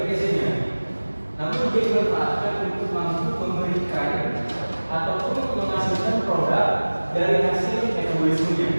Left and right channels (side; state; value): both; inverted; correlation -1.00